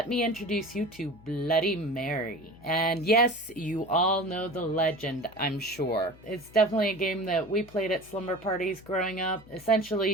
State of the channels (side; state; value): left; noise; hum, 23 dB below the sound